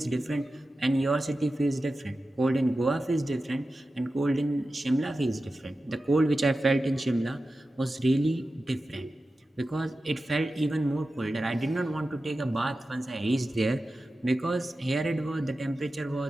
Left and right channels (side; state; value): both; normal; correlation 0.93